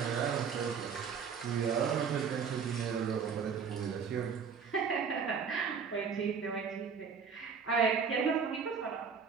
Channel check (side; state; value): left; quieter; 6.2 dB